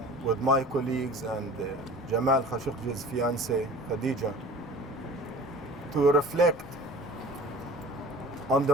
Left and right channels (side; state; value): both; normal; correlation 0.42